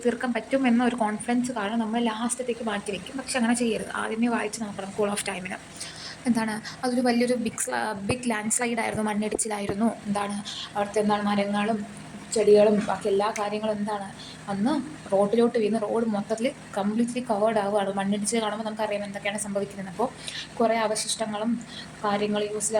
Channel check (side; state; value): both; identical; correlation 1.00